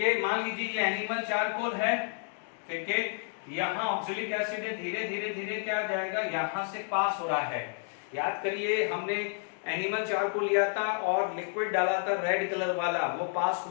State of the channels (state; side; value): silent; right; 57 dB below the other